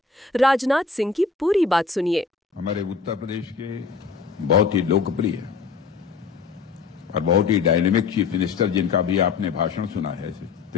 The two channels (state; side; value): quieter; right; 5.0 dB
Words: राजनाथ सिंह की पूरी बात सुनिए। हमारे उत्तर प्रदेश के बहुत ही लोकप्रिय और बहुत ही डायनेमिक चीफ मिनिस्टर, जिनका भी आपने भाषण सुना है,